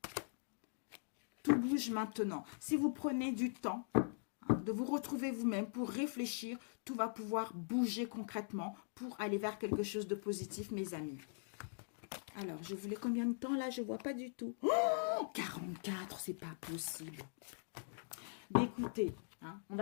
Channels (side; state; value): right; silent; digital silence